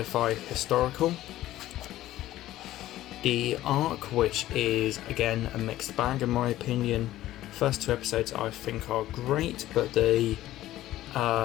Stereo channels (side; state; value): right; quieter; 14.6 dB